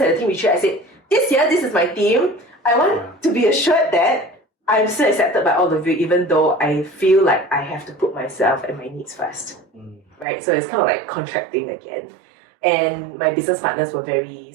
a team retreat. I said, this year, this is my team. I want to be assured that I'm still accepted by all of you, even though I feel like I have to put myself and my needs first. Right? So it's kind of like contracting again. And my business partners were very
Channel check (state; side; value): drops out; left; at 10.2 s